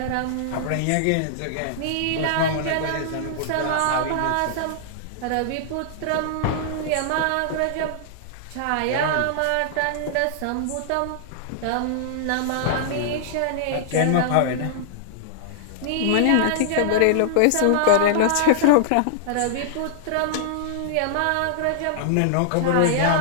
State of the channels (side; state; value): both; different; correlation -0.01